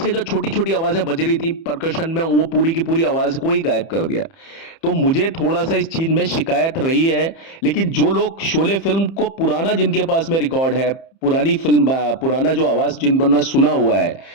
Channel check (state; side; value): late; right; 30 ms